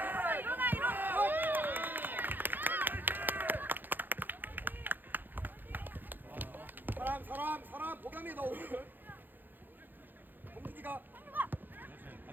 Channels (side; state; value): left; late; 0.089 ms